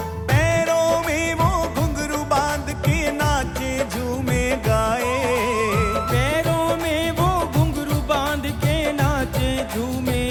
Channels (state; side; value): identical; both; correlation 1.00